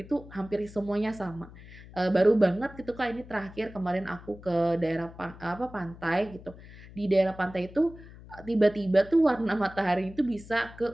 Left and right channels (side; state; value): left; noise; hum, 18 dB below the sound